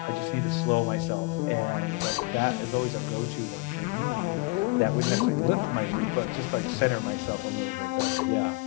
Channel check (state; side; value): quieter; right; 27.1 dB